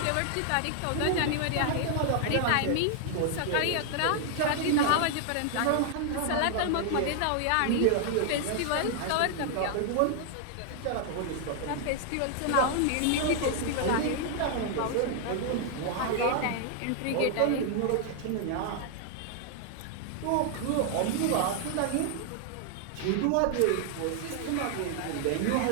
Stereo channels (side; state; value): both; different; correlation 0.00